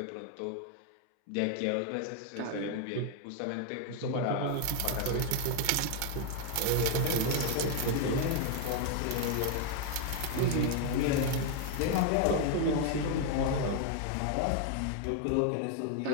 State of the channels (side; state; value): both; different; correlation 0.00